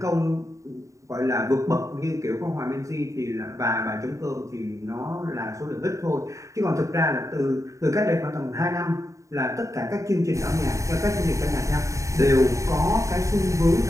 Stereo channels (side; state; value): left; late; 0.15 ms